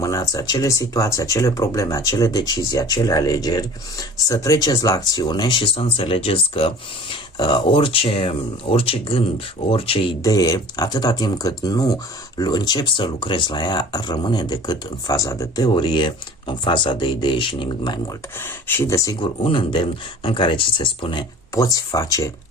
acele situații, acele probleme, acele decizii, acele alegeri, să treceți la acțiune și să înțelegeți că orice gând, orice idee, atâta timp cât nu încep să lucrezi la ea, rămâne decât în faza de teorie, în faza de idee și nimic mai mult. Și, desigur, un îndemn în care ți se spune, poți face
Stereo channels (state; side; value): normal; both; correlation 0.44